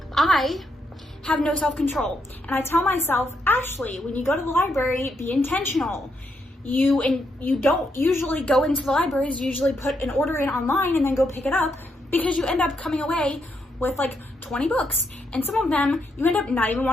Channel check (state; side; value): normal; both; correlation 0.79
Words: I have no self-control, and I tell myself, Ashley, when you go to the library, be intentional. You don't usually go into the libraries, you usually put an order in online and then go pick it up, because you end up coming away with like 20 books, and some of them you end up not even